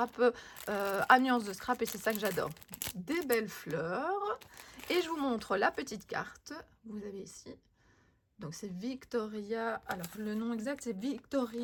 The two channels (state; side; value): identical; both; correlation 1.00